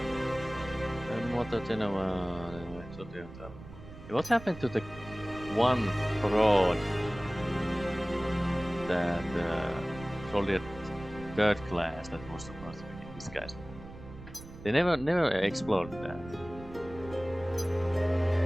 What happened to the one fraud that soldier third class that was supposed to be this guy's? They never explored that.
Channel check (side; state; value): right; noise; rumble, 15 dB below the sound